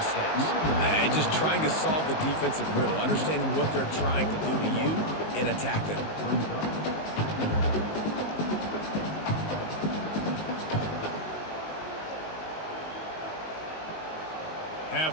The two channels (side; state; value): right; late; 19 ms